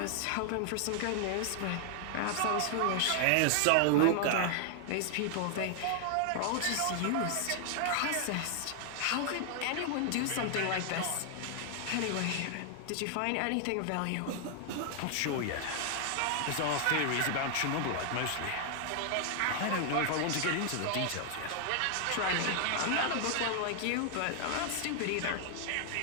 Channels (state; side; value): different; both; correlation 0.00